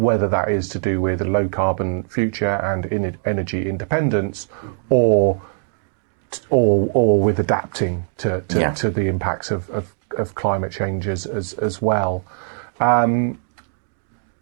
that is to do with a low carbon future and energy independence, or with adapting to the impacts of climate change as well.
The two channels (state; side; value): silent; left; digital silence